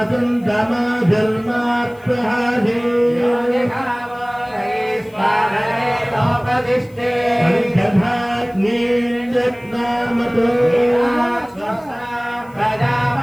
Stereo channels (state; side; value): noise; left; hiss, 30 dB below the sound